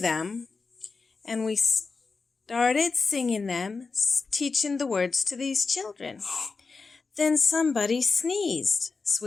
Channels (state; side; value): quieter; right; 4.4 dB